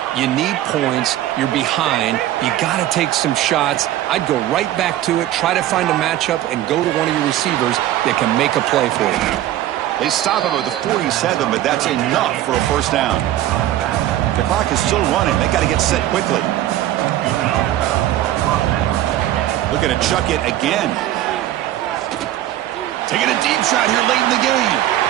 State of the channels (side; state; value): left; quieter; 13.4 dB